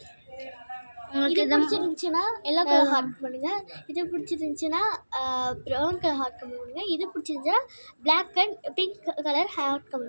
உங்களுக்கு இது பிடிச்சிருந்துச்சுன்னா எல்லோ கலர் ஹார்ட் பண்ணுங்கள். இது பிடிச்சிருந்துச்சுன்னா ப்ரௌன் கலர் ஹார்ட் கமெண்ட் பண்ணுங்கள். இது பிடிச்சிருந்துச்சுன்னா black and pink colour heart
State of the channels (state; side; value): inverted; both; correlation -1.00